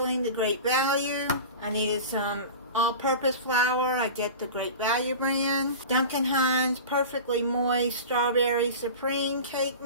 the Great Value. I needed some all-purpose flour. I get the Great Value brand. Duncan Hines Perfectly Moist Strawberry Supreme Cake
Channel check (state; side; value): inverted; both; correlation -0.33